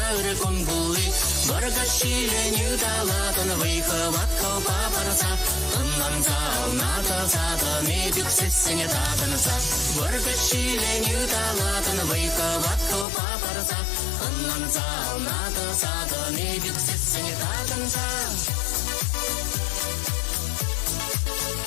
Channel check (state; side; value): drops out; right; at 13.1 s